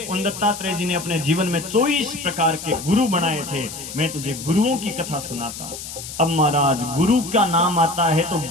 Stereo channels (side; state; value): left; noise; hiss, 10 dB below the sound